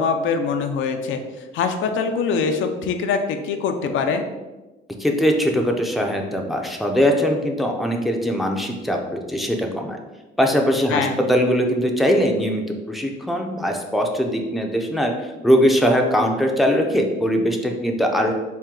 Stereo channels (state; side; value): normal; both; correlation 0.61